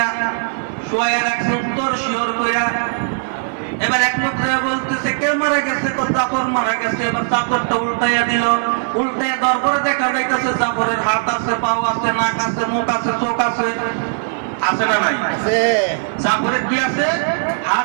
শোয়া রাখছে উত্তর শিওর কইরা। এবার এক লোক যে বলতেছে কে মারা গেছে? জাফর মারা গেছে। এবার চাদরটা উল্টাইয়া দিল। উল্টাইয়া দেওয়ার পরে দেখা যাইতেছে জাফরের হাত আছে, পাও আছে, নাক আছে, মুখ আছে, চোখ আছে। আছে না নাই? আছে। জাফরের কি আছে?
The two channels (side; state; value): left; silent; 59 dB below the other